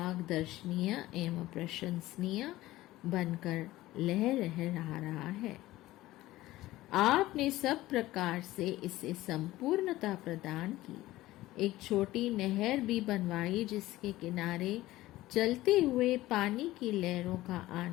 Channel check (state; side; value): quieter; right; 16.9 dB